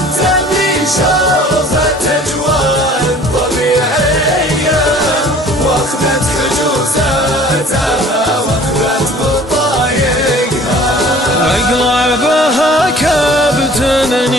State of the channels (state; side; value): normal; both; correlation 0.49